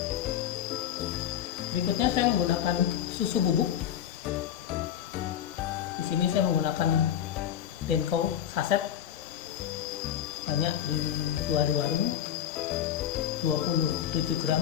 Berikutnya saya menggunakan susu bubuk. Di sini saya menggunakan Denko saset, banyak dijual di warung, 27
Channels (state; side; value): quieter; right; 10.2 dB